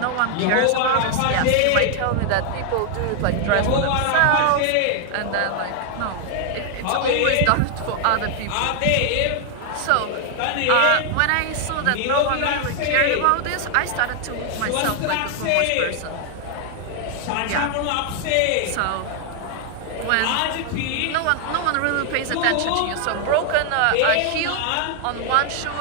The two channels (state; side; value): different; both; correlation 0.00